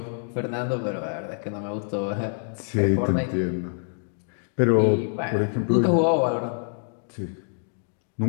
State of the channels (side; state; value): right; silent; digital silence